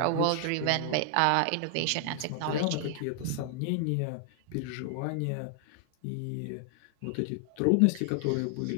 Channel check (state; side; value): different; both; correlation 0.00